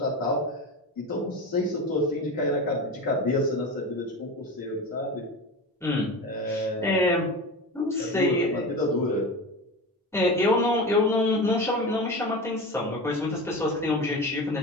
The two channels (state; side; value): normal; both; correlation 0.27